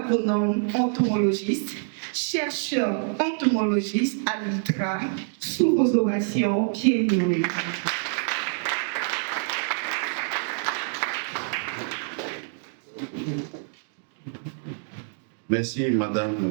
entomologiste, chercheur entomologiste à l'ITRA, sous vos ovations, bienvenue. Merci,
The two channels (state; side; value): silent; left; 61 dB below the other